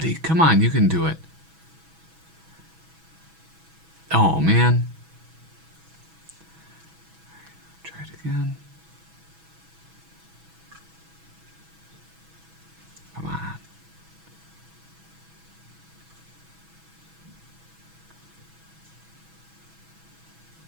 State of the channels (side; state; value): left; late; 6.1 ms